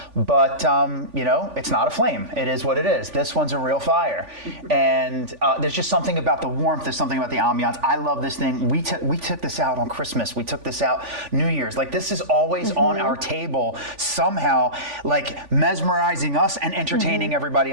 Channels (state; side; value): late; left; 3.5 ms